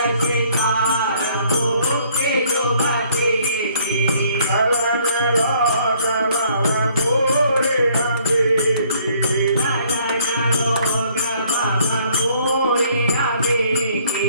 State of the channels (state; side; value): inverted; both; correlation -0.62